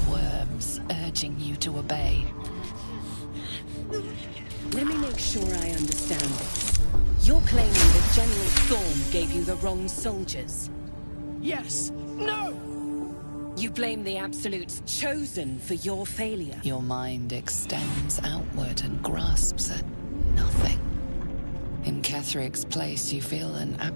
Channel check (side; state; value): both; inverted; correlation -1.00